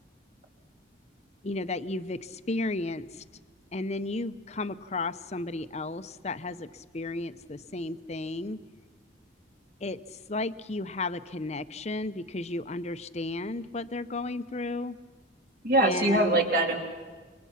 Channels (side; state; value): both; normal; correlation 0.28